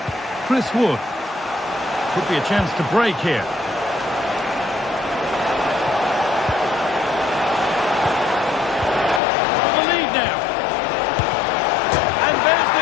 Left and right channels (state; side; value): drops out; right; at 9.2 s